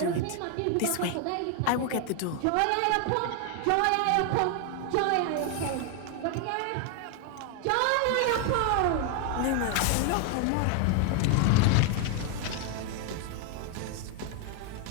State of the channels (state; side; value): different; both; correlation 0.00